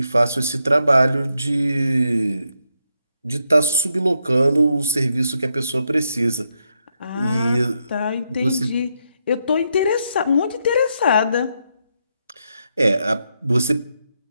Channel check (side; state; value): both; inverted; correlation -0.81